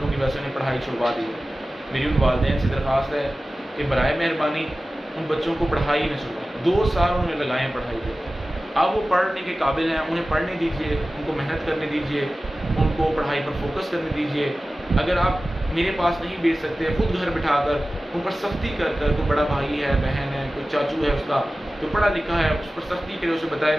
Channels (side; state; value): both; normal; correlation 0.96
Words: کی وجہ سے انہیں پڑھائی چھڑوا دی، میری ان والدین سے درخواست ہے کہ برائے مہربانی ان بچوں کو پڑھائی نہ چھڑوائیں۔ 2 سال انہوں نے لگائے ہیں پڑھائی پہ، اب وہ پڑھنے کے قابل ہیں، انہیں پڑھنے دیجیے، ان کو محنت کرنے دیجیے، ان کو پڑھائی پر فوکس کرنے دیجیے۔ اگر آپ میرے پاس نہیں بھیج سکتے، خود گھر بٹھا کر ان پر سختی کر کر، کوئی بڑا بھائی ہے، بہن ہے، کوئی چاچو ہے اس کا جو پڑھا لکھا ہے، اس پر سختی کرے، اسے بتائے